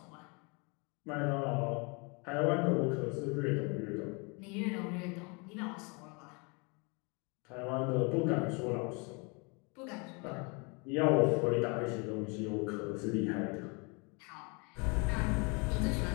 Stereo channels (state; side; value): quieter; right; 31.4 dB